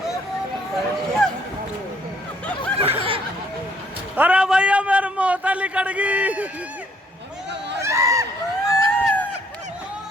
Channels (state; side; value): normal; both; correlation 0.65